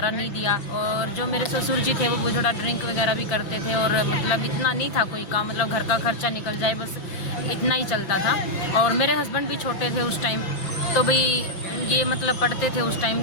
नहीं दिया। और जो मेरे ससुर जी थे वो थोड़ा ड्रिंक वगैरह भी करते थे, और मतलब इतना नहीं था कोई काम, मतलब घर का खर्चा निकल जाए बस इतना ही चलता था। और मेरे हस्बैंड भी छोटे थे उस टाइम, तो भाई ये मतलब पढ़ते थे उस टाइम।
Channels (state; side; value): late; right; 5.8 ms